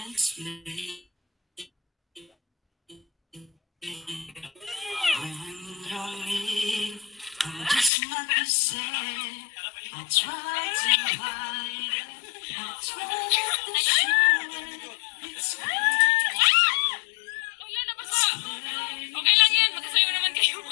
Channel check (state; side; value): drops out; right; at 7.9 s